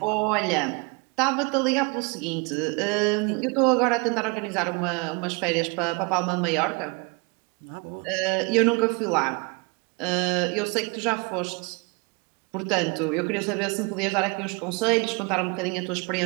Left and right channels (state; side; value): quieter; left; 30.3 dB